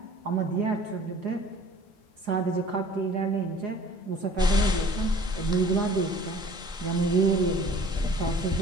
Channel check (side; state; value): both; normal; correlation 0.49